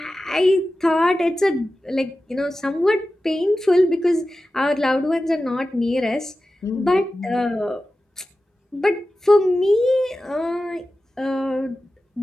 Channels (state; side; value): normal; both; correlation 0.94